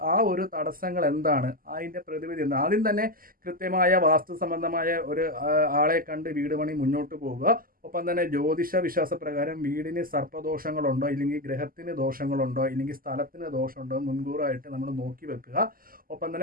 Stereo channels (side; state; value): left; late; 0.42 ms